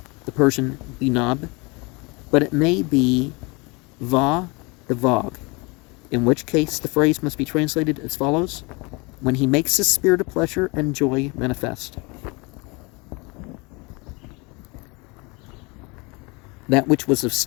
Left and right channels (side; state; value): right; quieter; 27.6 dB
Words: the Persian Binab, but it may be Va the Vog, in which case the phrase must be translated as follows: when he makes his spirit of pleasure and joy manifest. That which was of